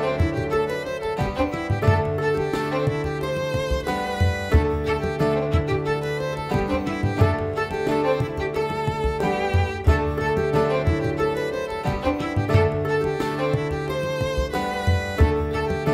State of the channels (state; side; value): identical; both; correlation 1.00